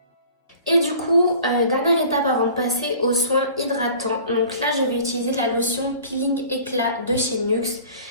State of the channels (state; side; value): inverted; both; correlation -0.46